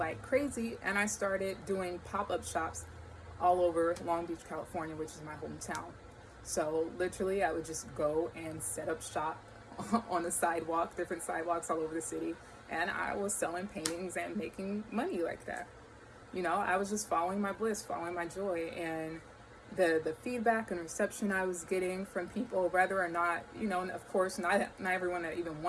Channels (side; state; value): both; identical; correlation 1.00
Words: crazy, and I started doing pop-up shops all over Long Beach, California, which is my hometown. So literally I would just go and set up shop on the sidewalk, different sidewalks all over the city, and I was selling paintings and making money like that. I was just following my bliss, following my joy, and the feedback and reception I was getting from people, whether or not, and of course, not everyone that even